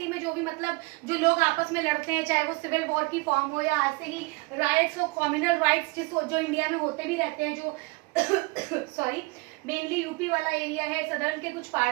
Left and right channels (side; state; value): left; quieter; 26.6 dB